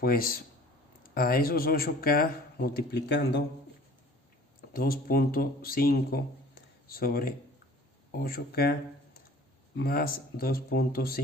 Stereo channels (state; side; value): normal; both; correlation 0.48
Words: pues a esos 8K multiplicando 2.5 sobre 8K más